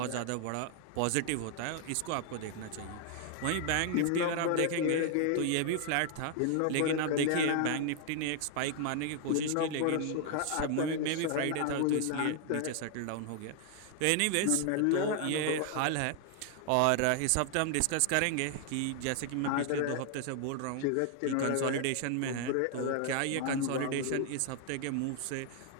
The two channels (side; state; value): both; different; correlation 0.00